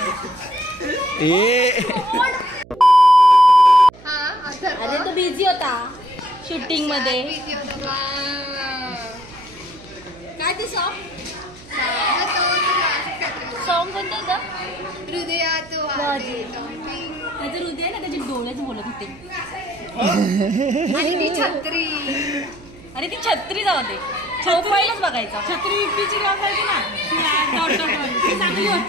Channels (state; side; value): noise; right; hum, 21 dB below the sound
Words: ए हा अथर्व. अरे तो बिझी होता शूटिंग मध्ये. Busy होता बा. काय ते सॉन्ग तो सॉन्ग कोणतं होतं? हृदयात वादे टॉपिंग. त्याचं हृदय ना त्याचे डोळेच बोलत होते. आणि ती छत्री. अरे ती छत्री जाऊ दे, प्रोफाईलच बघायचा. छत्री इपीची गाव पाहिजे ना, ती चांगली